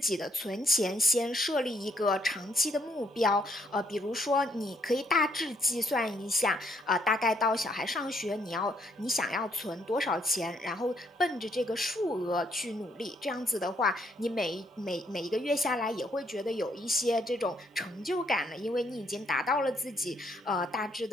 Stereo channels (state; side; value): normal; both; correlation 0.71